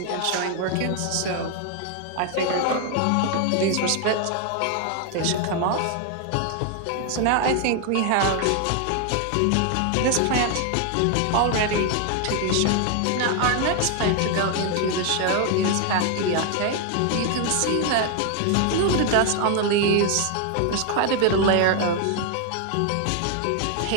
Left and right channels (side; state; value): both; different; correlation 0.01